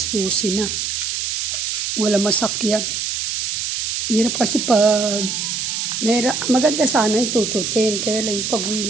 12 na. Wala masakyan. Hirap kasi pag maganda sana yung tututin, kaya lang yung pag-uwi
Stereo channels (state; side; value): noise; right; hiss, 2 dB below the sound